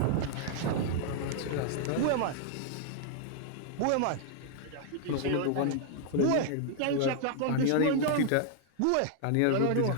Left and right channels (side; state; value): both; different; correlation 0.00